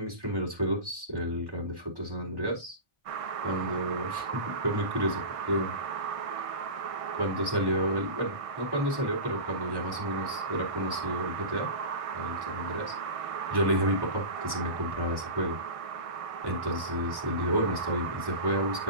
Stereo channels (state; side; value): late; left; 1.1 ms